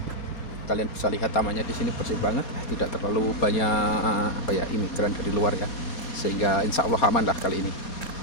Kalian bisa lihat tamannya di sini bersih banget, tidak terlalu banyak imigran dari luar ya. Sehingga insya Allah aman lah kali ini.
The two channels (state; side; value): late; right; 4.3 ms